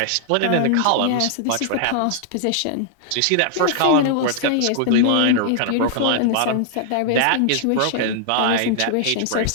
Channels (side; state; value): both; different; correlation -0.01